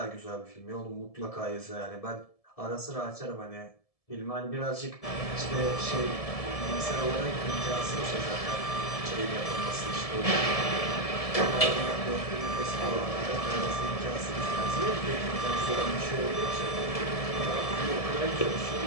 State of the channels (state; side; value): late; right; 1.7 ms